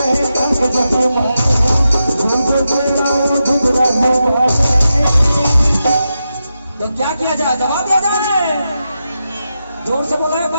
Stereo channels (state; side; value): inverted; both; correlation -0.88